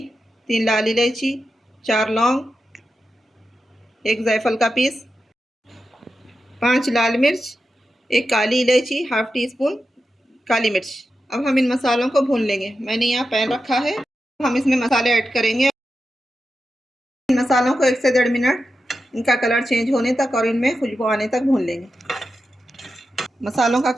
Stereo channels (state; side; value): normal; both; correlation 0.90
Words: 3 लाल इलायची, 4 लौंग, 1 जायफल का पीस, 5 लाल मिर्च, 1 काली इलायची, हाफ टी स्पून काली मिर्च। अब हम इन मसालों को भून लेंगे। मैंने यहाँ पैन रखा है, हम इसमें मसाले ऐड करेंगे। इन मसालों को 1 से 1.5 मिनट इनका कलर चेंज होने तक और इनमें खुशबू आने तक भून लेंगे। मसालों का